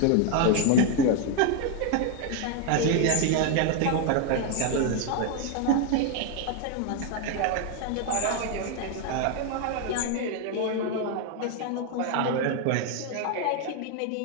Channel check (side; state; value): both; different; correlation 0.01